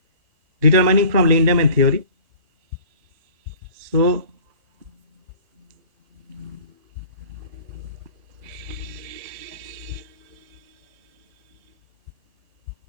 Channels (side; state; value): left; late; 1.8 ms